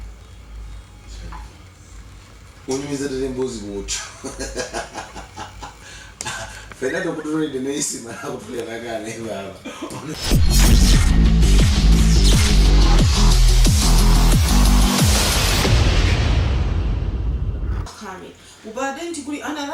Unyumizira mbuzi mucho. Fernando kutulinde neisi mara kutulia nakane baba. كامل. وبعدين تقولي أنا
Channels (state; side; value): identical; both; correlation 1.00